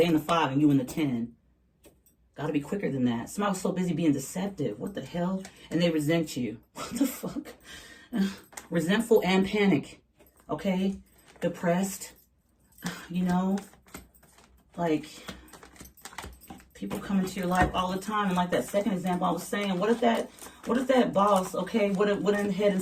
in the 5 and you in the 10. Gotta be quicker than that. Somebody was so busy being deceptive. What the hell? And they resent you. What the fuck? Resentful and panic. Okay? Depressed. Like, people come into your life all the time. And like that second example I was saying, what if that boss, okay, would have went ahead and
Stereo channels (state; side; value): identical; both; correlation 1.00